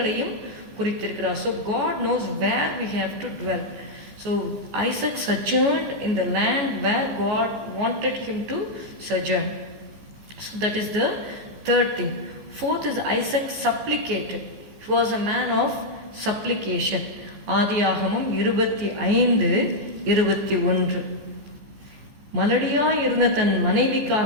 குறித்திருக்கிறார். So God knows where we have to dwell. So Isaac sojourned in the land where God wanted him to sojourn. So that is the third thing. Fourth is Isaac supplicated. He was a man of supplication. ஆதியாகமம் 25:21 மலடியாய் இருந்த தன்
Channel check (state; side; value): late; left; 14 ms